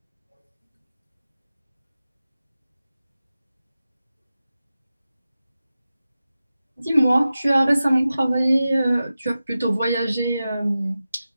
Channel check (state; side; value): inverted; both; correlation -0.94